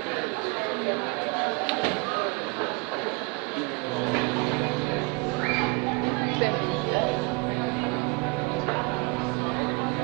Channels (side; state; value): left; quieter; 28.3 dB